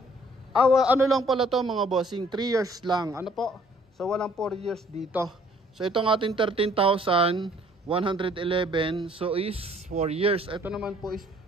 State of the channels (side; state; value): both; normal; correlation 0.60